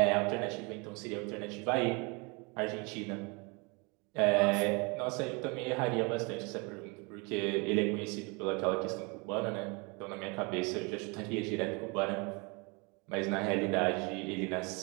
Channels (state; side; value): quieter; left; 29.8 dB